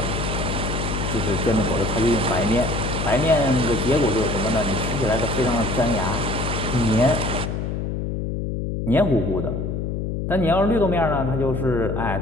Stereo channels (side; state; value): left; noise; hum, 2 dB below the sound